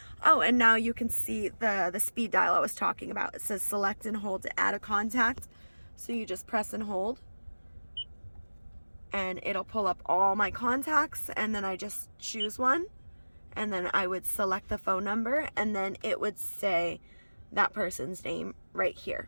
Oh, and now you can see the speed dial I was talking about. It says select and hold to add a contact. So you just press and hold, and it'll pull up all my contacts, and then I just choose one, and then I would select the phone number, and then it would say that person's name right here.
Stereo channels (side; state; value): both; inverted; correlation -1.00